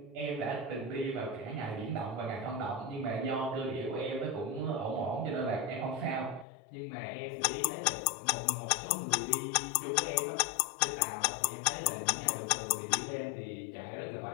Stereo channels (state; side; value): drops out; right; at 6.5 s